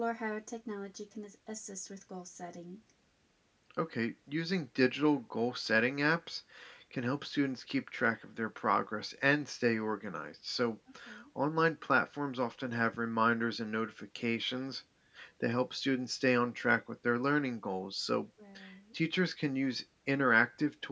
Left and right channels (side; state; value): both; identical; correlation 1.00